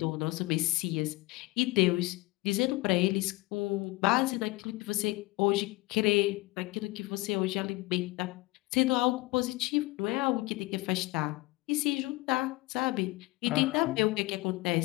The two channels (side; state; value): right; quieter; 22.4 dB